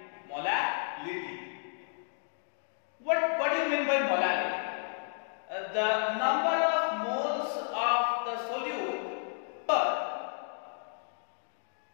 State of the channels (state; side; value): silent; right; digital silence